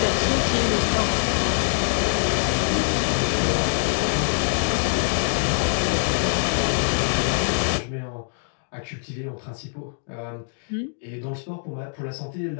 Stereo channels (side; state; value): right; silent; digital silence